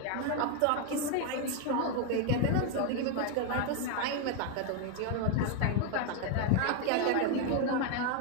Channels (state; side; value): different; both; correlation 0.01